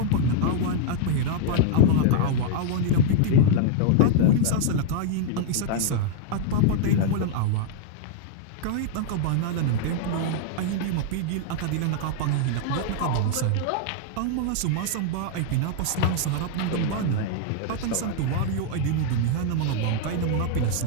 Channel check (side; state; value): both; different; correlation -0.01